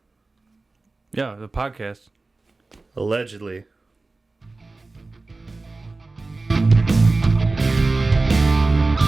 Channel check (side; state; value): left; quieter; 3.4 dB